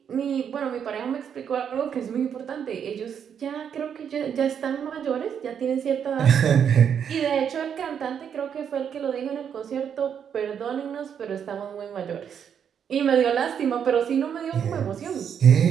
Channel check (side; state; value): left; quieter; 8.0 dB